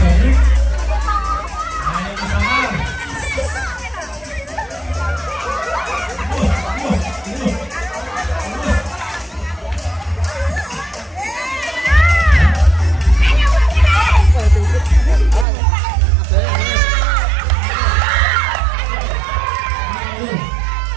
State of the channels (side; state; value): left; drops out; at 15.5 s